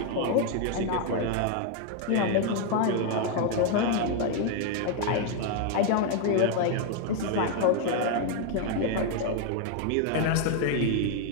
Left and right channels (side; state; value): both; different; correlation 0.01